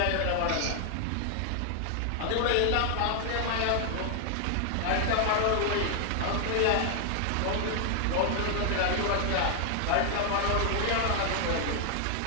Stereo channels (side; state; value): both; different; correlation 0.00